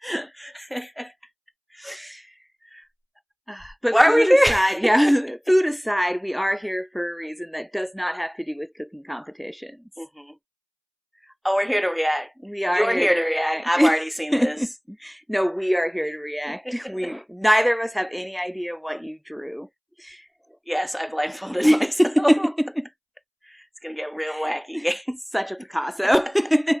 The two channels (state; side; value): identical; both; correlation 1.00